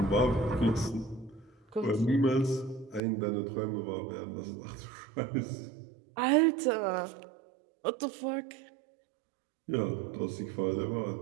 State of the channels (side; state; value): left; drops out; at 3.0 s